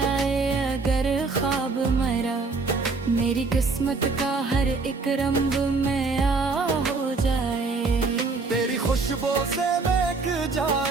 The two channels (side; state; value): left; quieter; 4.0 dB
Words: अगर ख्वाब मरा, मेरी किस्मत का हर एक रंग में आ हो जाए। तेरी खुशबू से महक